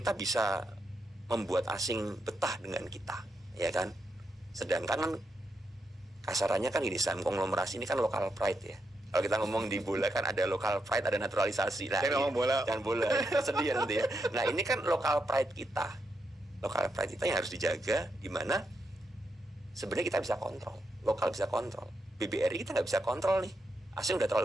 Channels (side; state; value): both; normal; correlation 0.83